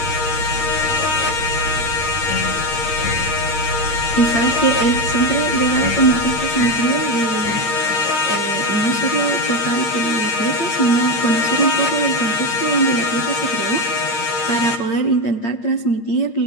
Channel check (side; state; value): right; late; 8.7 ms